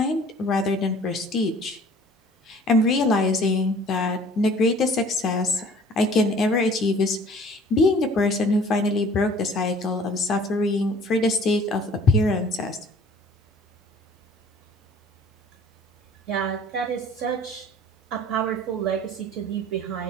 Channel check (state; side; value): normal; both; correlation 0.51